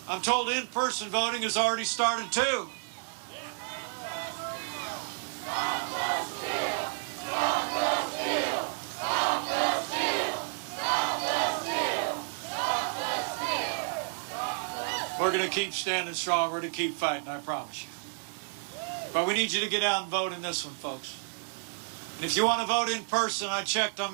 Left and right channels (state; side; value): silent; left; 57 dB below the other